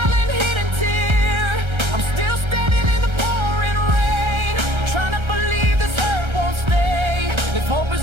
hidden tear. I'm still standing in the pouring rain, trying to believe this hurt won't stay. If hope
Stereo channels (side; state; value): left; late; 1.3 ms